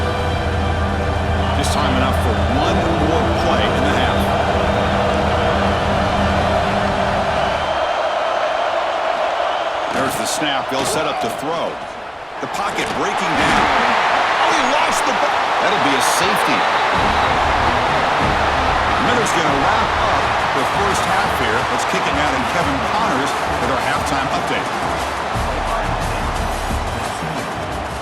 Just time enough for 1 more play in the half. There's the snap. They'll set up to throw. The pocket breaking down. Oh, he lost the ball. That'll be a safety. Miller's going to wrap up the first half here. Let's kick it out in Kevin Connors with our halftime update.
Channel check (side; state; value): both; identical; correlation 1.00